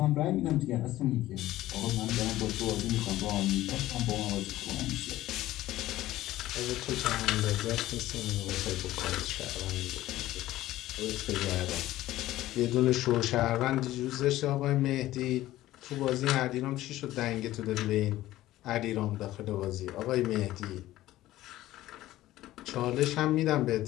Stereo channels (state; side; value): quieter; right; 15.4 dB